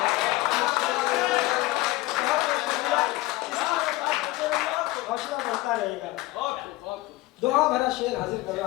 हौसला बढ़ता रहेगा। दुआ भरा शेर हाजिर कर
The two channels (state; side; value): quieter; right; 19.2 dB